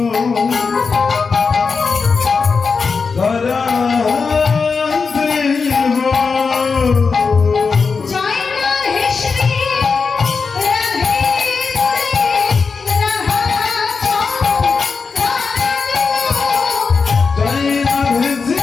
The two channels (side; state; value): right; quieter; 5.0 dB